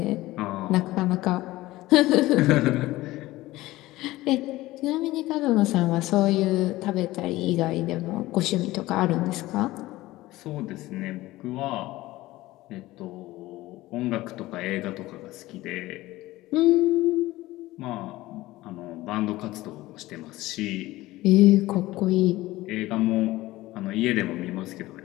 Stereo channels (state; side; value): quieter; right; 17.8 dB